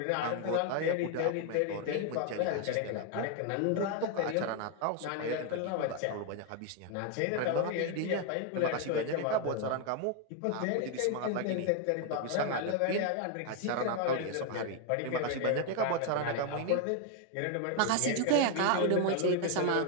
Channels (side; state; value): both; different; correlation 0.00